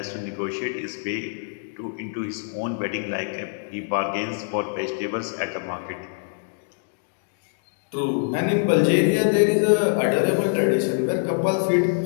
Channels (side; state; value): right; silent; digital silence